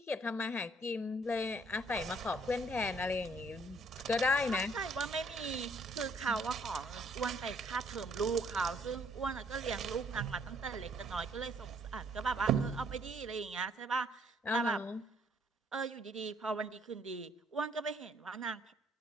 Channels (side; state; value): both; normal; correlation 0.64